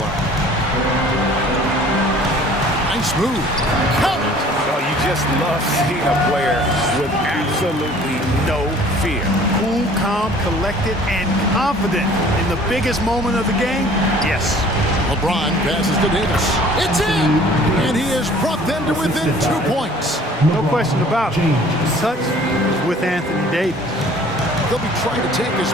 Nice move. Count. Oh, you just love seeing a player with absolutely no fear. Cool, calm, collected, and confident in the biggest moment of the game? Yes. LeBron passes to Davis. It's in! And he has brought them to within 2 points. No question about it. The touch is with Anthony Davis. They'll be trying to take as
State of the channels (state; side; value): normal; both; correlation 0.51